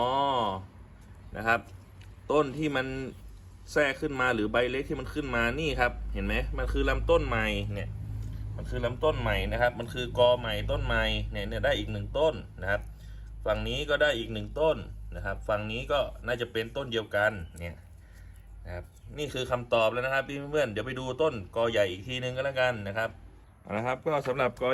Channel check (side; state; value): both; identical; correlation 1.00